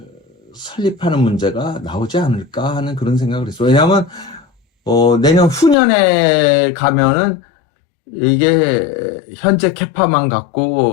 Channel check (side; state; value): right; drops out; at 5.8 s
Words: 설립하는 문제가 나오지 않을까 하는 그런 생각을 했어. 왜냐하면, 내년 후년에 가면은, 이게 현재 캐파만